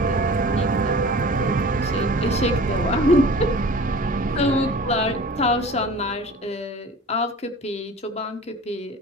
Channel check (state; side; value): normal; both; correlation 0.41